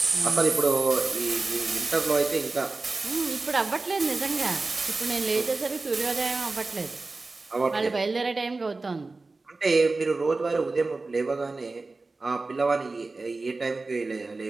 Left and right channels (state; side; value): quieter; left; 3.5 dB